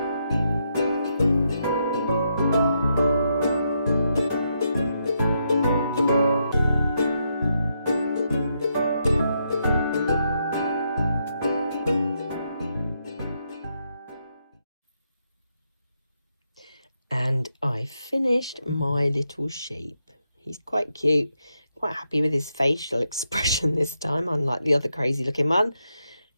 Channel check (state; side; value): inverted; both; correlation -0.80